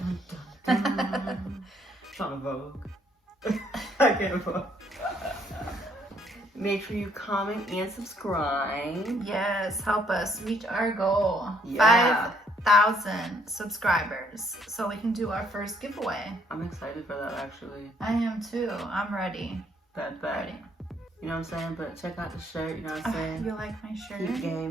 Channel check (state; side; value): normal; both; correlation 0.67